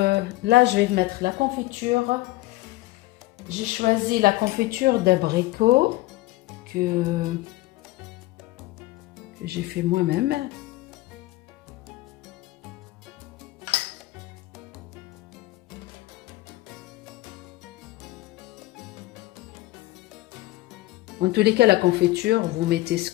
je vais mettre la confiture. J'ai choisi la confiture d'abricot que j'ai fait moi-même. En tous les cas, la confiture, vous mettez ce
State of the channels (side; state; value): right; quieter; 18.5 dB